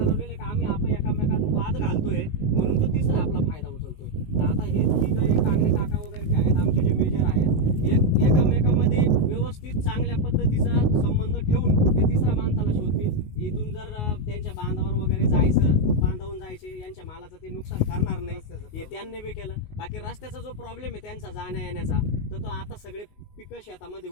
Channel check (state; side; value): late; right; 19 ms